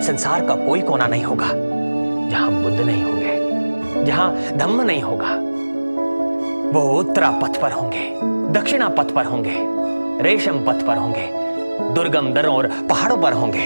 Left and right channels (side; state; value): both; inverted; correlation -1.00